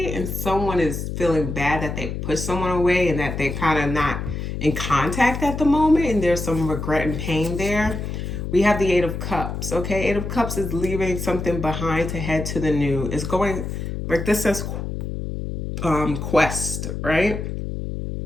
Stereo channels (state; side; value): noise; left; hum, 5 dB below the sound